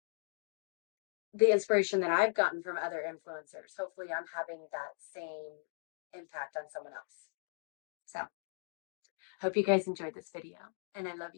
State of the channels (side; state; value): right; silent; digital silence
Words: the inspiration that I've gotten from other influencers, hopefully I'm having that same impact on someone else. So, hope you guys enjoyed this video, and I love